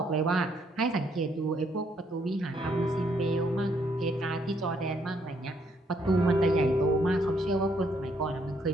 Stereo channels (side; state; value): both; normal; correlation 0.71